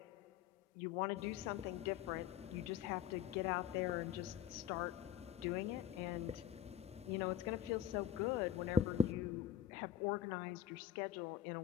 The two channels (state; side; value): quieter; right; 9.9 dB